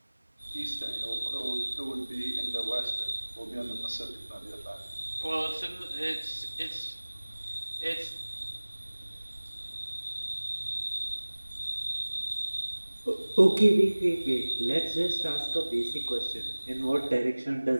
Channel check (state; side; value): inverted; both; correlation -1.00